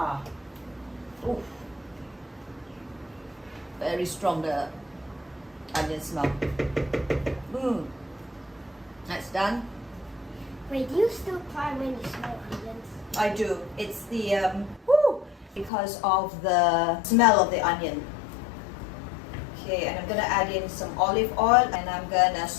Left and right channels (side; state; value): right; drops out; at 15.7 s